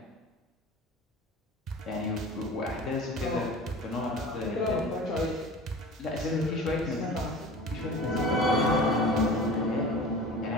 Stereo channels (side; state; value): both; normal; correlation 0.38